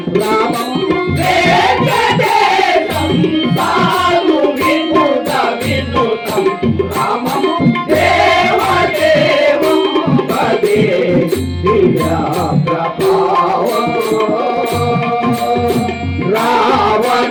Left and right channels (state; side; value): identical; both; correlation 1.00